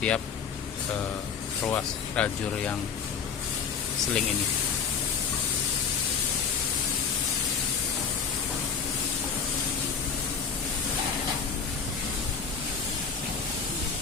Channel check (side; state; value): right; quieter; 6.2 dB